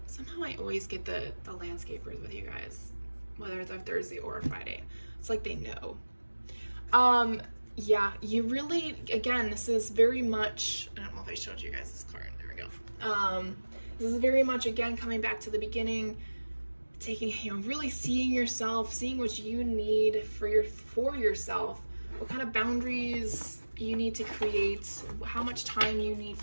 somehow I always get the landscapers with you guys, whether it's a Thursday or a Friday. It's like they know. Yeah, you really, again, this is very much, I don't know if I showed you guys this card. There we go. This is very much, again, coming back to the beginning, taking, really seeing yourself, seeing what you need for yourself. What kind of boundaries you need to create, how much time you need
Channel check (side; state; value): both; inverted; correlation -1.00